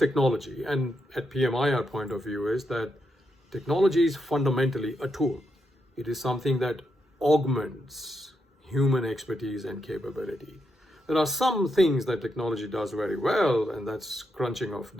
And at PMI, our point of view is that technology is fundamentally a tool. It is something that augments human expertise and capability. There are some things that technology does very well, and that's crunching of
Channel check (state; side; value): normal; both; correlation 0.82